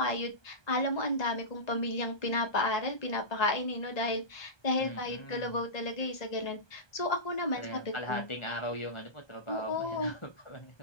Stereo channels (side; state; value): right; late; 1.2 ms